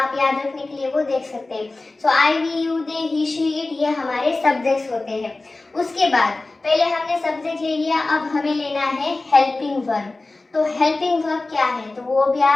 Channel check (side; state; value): right; quieter; 3.2 dB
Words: याद रखने के लिए वो देख सकते हैं। So I, we, you, they, he, she, it, ये हमारे सब्जेक्ट्स होते हैं। उसके बाद पहले हमने सब्जेक्ट ले लिया, अब हमें लेना है हेल्पिंग वर्ब। तो हेल्पिंग वर्ब क्या है, तो वो भी